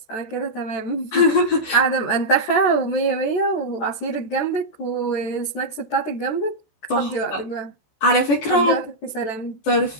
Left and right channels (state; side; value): late; right; 14 ms